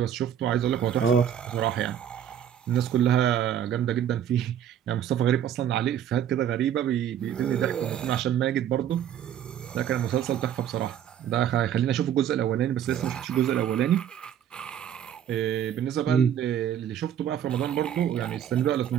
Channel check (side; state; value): left; quieter; 9.8 dB